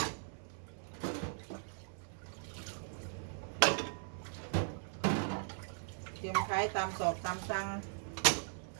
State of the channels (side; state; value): left; silent; 52 dB below the other